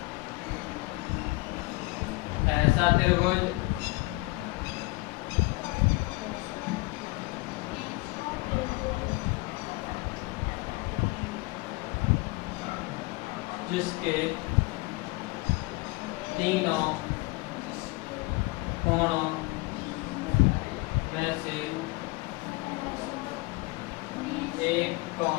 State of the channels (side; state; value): right; quieter; 23.3 dB